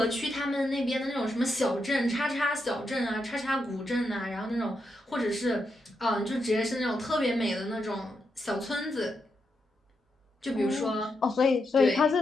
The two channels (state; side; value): normal; both; correlation 0.84